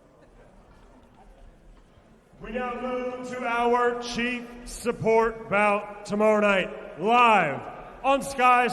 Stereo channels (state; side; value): identical; both; correlation 1.00